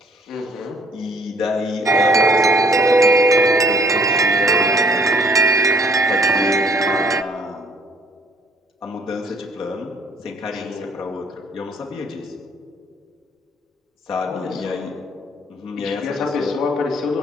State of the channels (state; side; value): normal; both; correlation 0.60